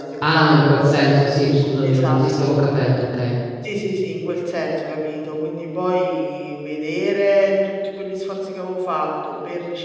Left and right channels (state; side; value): identical; both; correlation 1.00